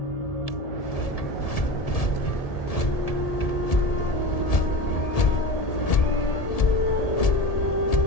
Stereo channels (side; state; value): right; late; 1.7 ms